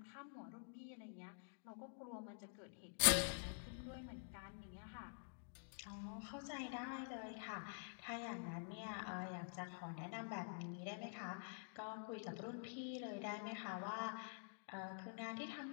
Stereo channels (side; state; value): right; silent; digital silence